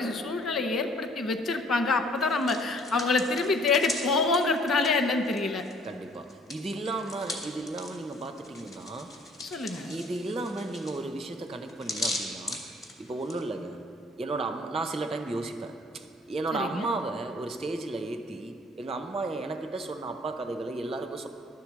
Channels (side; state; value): both; normal; correlation 0.57